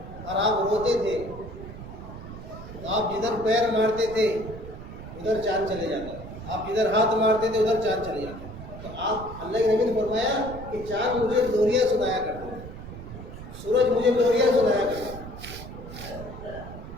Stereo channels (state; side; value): noise; right; rumble, 12 dB below the sound